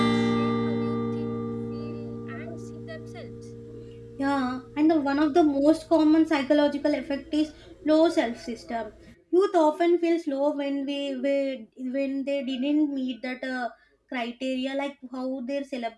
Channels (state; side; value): identical; both; correlation 1.00